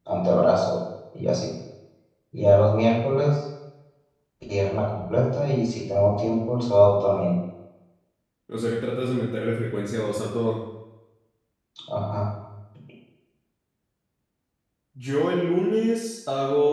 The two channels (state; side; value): identical; both; correlation 1.00